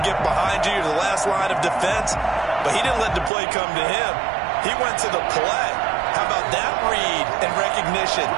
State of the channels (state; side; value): drops out; left; at 3.3 s